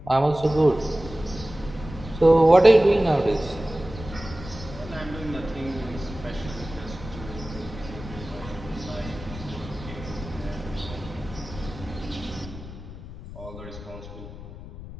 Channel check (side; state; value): left; noise; rumble, 13 dB below the sound